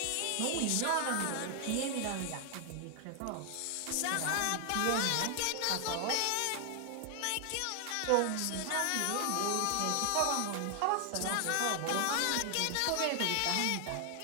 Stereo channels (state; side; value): different; both; correlation 0.00